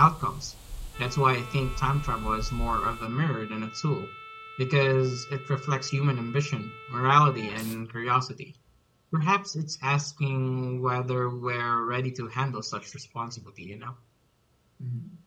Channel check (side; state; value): both; identical; correlation 1.00